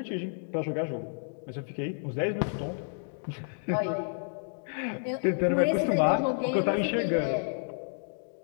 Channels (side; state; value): right; silent; digital silence